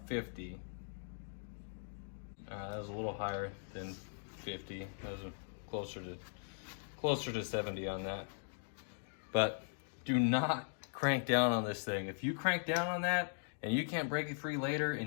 50. That was a little higher than 50. That was closer to 70 on that. But do not crank down on this thing. If you crank down on that, and you can't break it free later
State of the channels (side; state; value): right; silent; digital silence